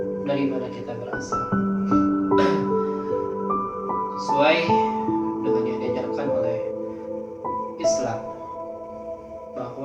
dari mana kita berasal. Sesuai dengan yang diajarkan oleh Islam,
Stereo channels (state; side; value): identical; both; correlation 1.00